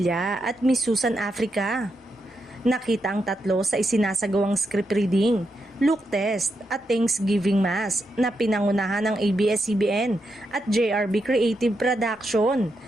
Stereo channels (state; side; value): normal; both; correlation 0.84